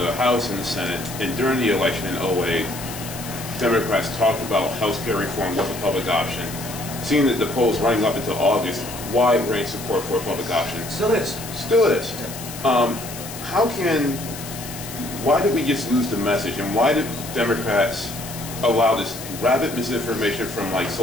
House and the Senate. And during the election in 2008, Democrats talked about health care reform was a public option. Seeing that the polls running up until August, wide range support for a public option. Still is. Still is. Why did we just lose the message, and why did Democrats allow this rabid misinformation from like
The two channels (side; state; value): left; noise; hiss, 11 dB below the sound